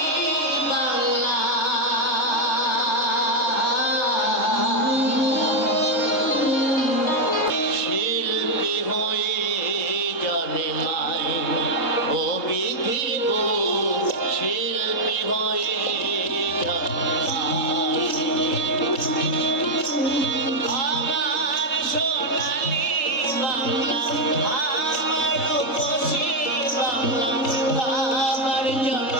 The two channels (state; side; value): late; right; 3.7 ms